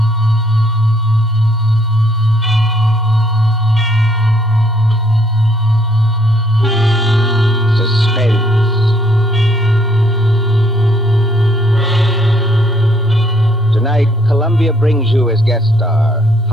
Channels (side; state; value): both; normal; correlation 0.67